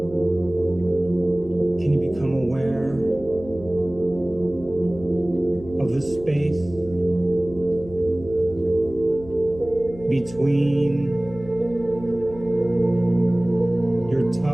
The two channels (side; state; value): left; noise; hum, 17 dB below the sound